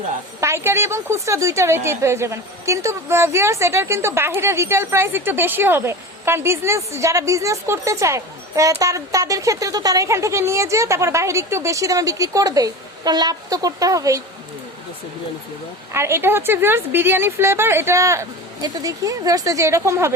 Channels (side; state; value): both; normal; correlation 0.30